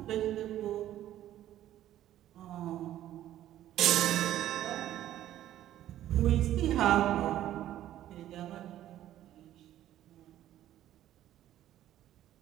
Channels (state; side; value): quieter; left; 12.7 dB